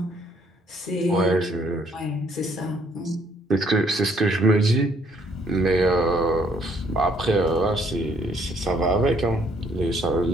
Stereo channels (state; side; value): normal; both; correlation 0.66